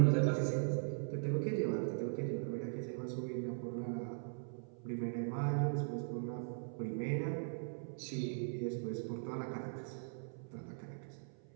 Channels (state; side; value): silent; left; 51 dB below the other